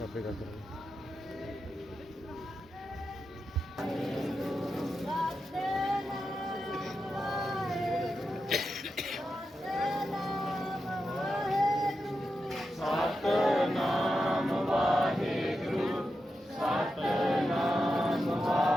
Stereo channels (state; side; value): normal; both; correlation 0.89